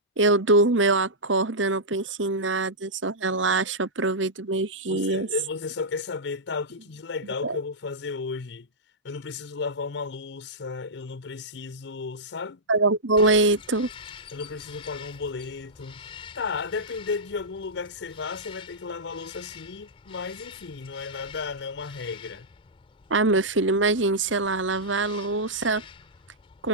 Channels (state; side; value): normal; both; correlation -0.12